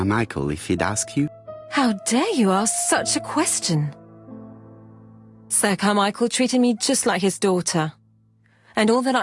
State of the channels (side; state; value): both; identical; correlation 1.00